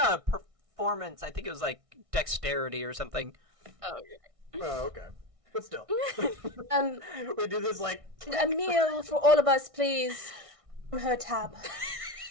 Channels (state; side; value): late; left; 1.6 ms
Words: a performance. I think it was like dexterity or something. Oh, Oh, okay. But still. Um, We do this like. Emil, for all of us, please. On her tab.